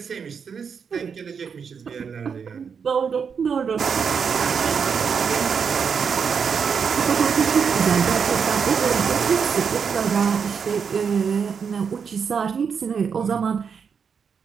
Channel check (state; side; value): quieter; left; 6.4 dB